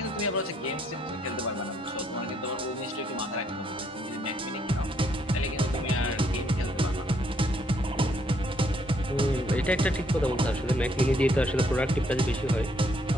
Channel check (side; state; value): both; normal; correlation 0.70